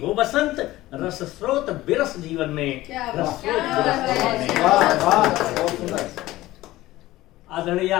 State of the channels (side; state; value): right; quieter; 16.9 dB